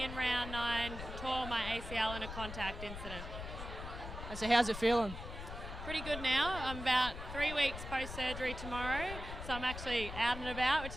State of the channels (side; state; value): left; noise; rumble, 8 dB below the sound